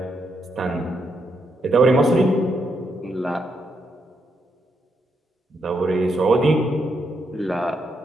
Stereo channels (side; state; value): both; normal; correlation 0.79